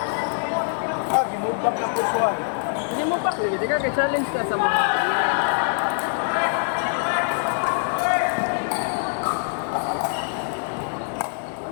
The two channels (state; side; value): silent; right; digital silence